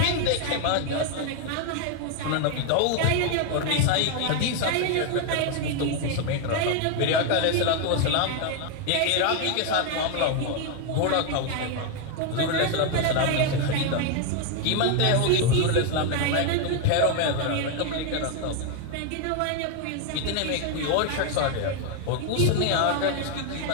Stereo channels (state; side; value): different; both; correlation 0.01